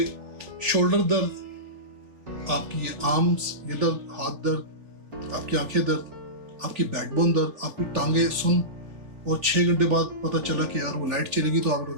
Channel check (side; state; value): left; late; 3.4 ms